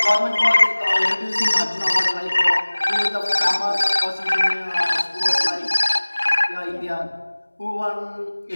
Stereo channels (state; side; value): inverted; both; correlation -1.00